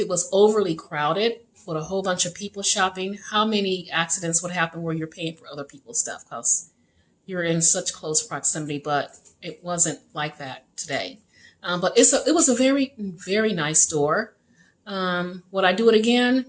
was overly crowded with a whole bunch of people shopping, how many accidents would happen where you're paying for other people's stuff because you're in such close proximity, but it wasn't like that today. But it was a very, very nice store. Would I do it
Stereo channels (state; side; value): identical; both; correlation 1.00